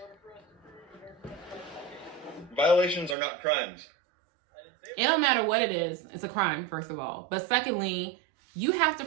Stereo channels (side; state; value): left; drops out; at 3.2 s